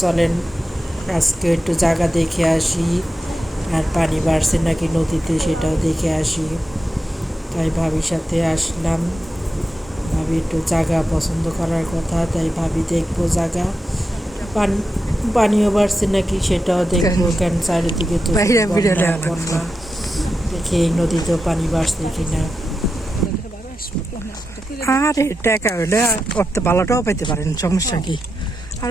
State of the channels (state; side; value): normal; both; correlation 0.89